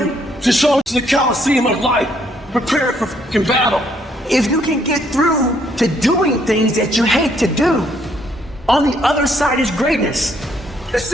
to show up to the Coliseum of life, prepare for fucking battle. If you can get through to doing things that you hate to do, on the other side is greatness. The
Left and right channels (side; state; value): both; normal; correlation 0.69